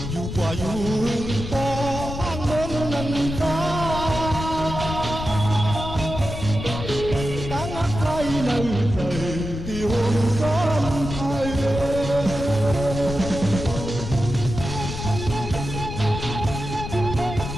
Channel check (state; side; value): noise; left; rumble, 7 dB below the sound